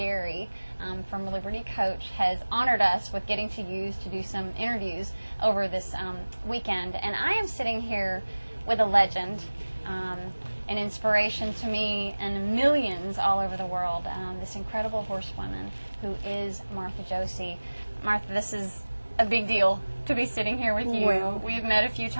from Liberty Coach has honored us with getting to use to do some interviews over this weekend. And I am sitting here with a legend, an inspiration to me and millions all over the world, this incredible horsewoman who is Martha Josey. Martha, this is a big deal to be sitting here with you. Well, we've met a few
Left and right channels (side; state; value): both; inverted; correlation -1.00